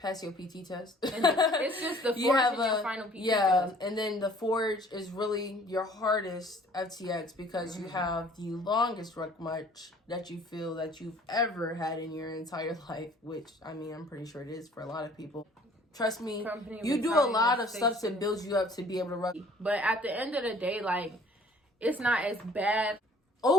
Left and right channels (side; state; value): both; normal; correlation 0.54